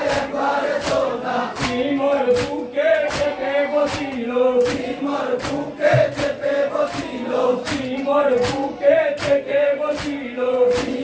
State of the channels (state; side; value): identical; both; correlation 1.00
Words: সিমর বুকে চেপে বসিল সিমর বুকে চেপে বসিল সিমর বুকে চেপে বসিল